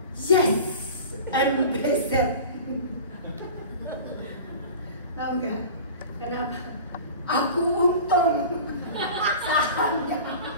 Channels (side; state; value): both; inverted; correlation -0.37